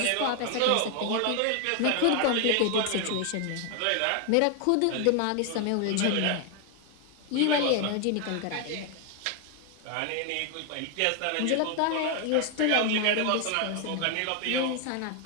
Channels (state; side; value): different; both; correlation 0.01